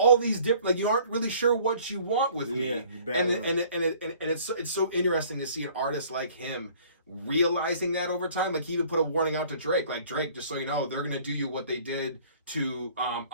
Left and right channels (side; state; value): both; inverted; correlation -0.54